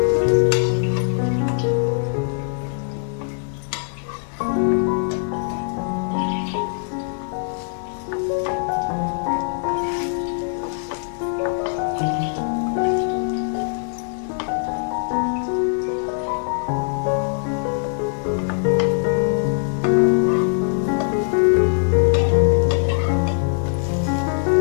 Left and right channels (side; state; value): right; silent; digital silence